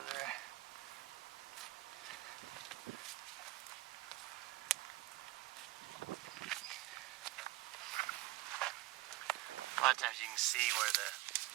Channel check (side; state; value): left; quieter; 17.7 dB